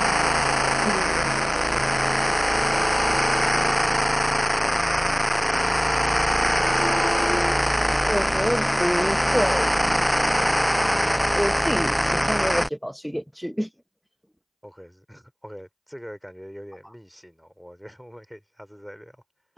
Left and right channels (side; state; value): both; identical; correlation 1.00